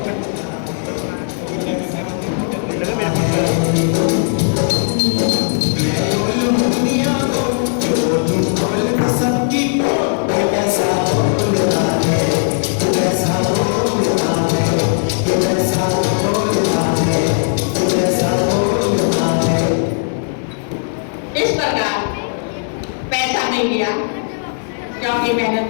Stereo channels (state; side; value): silent; right; digital silence